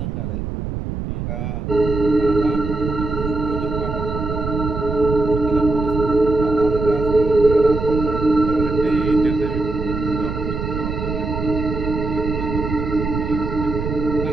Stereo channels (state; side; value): noise; right; rumble, 4 dB below the sound